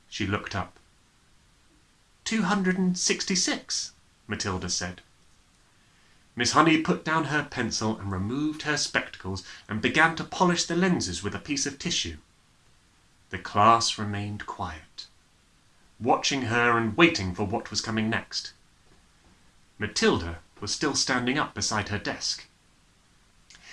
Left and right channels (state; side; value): identical; both; correlation 1.00